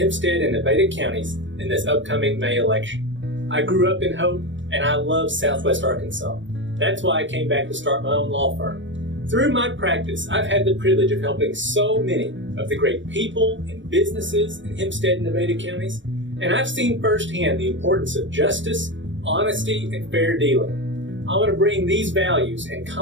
and Nevada counties in this upcoming May election. I grew up in Hope, and I love Southwest Arkansas. That's why I came back to start my own law firm. Through my practice, I've had the privilege of helping so many of the great people and businesses in Hempstead and Nevada counties, and I've seen firsthand the importance of justice, honesty, and fair dealing. I want to bring these values and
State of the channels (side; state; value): left; late; 0.55 ms